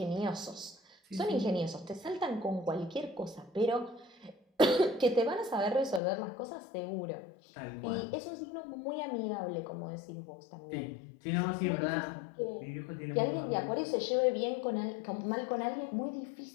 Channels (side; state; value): right; drops out; at 6.0 s